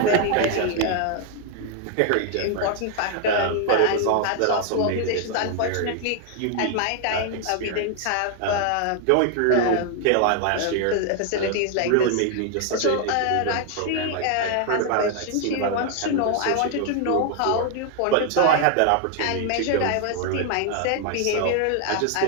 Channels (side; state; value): both; different; correlation 0.00